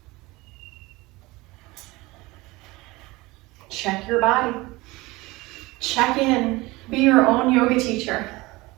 Check your body. Check in. Be your own yoga teacher.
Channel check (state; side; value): quieter; left; 21.6 dB